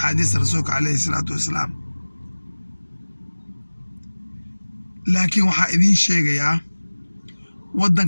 رسولك عليه الصلاة والسلام لكن وحا إذين شيء يا ودن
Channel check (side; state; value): both; inverted; correlation -1.00